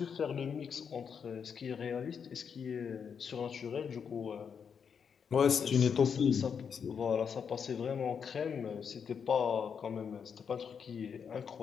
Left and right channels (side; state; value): right; quieter; 6.8 dB